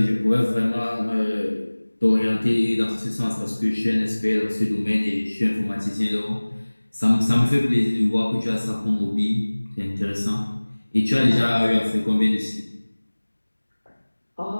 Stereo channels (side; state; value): both; inverted; correlation -1.00